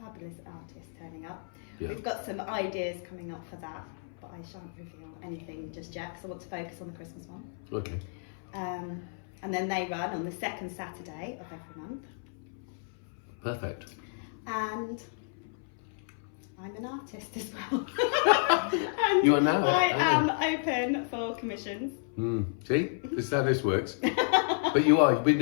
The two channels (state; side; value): silent; right; 57 dB below the other